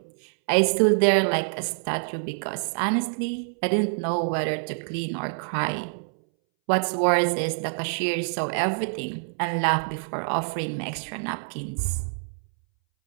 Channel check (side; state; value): left; silent; 61 dB below the other